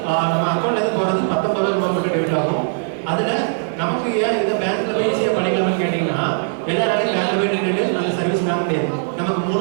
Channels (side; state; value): left; silent; digital silence